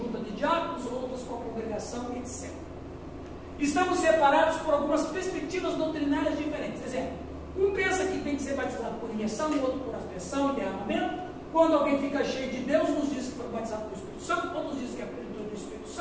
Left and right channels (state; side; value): identical; both; correlation 1.00